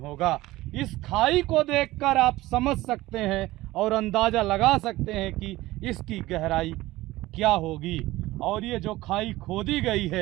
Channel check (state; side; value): quieter; left; 17.9 dB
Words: इस खाई को देखकर आप समझ सकते हैं और अंदाजा लगा सकते हैं कि इसकी गहराई क्या होगी। और ये जो खाई खोदी गई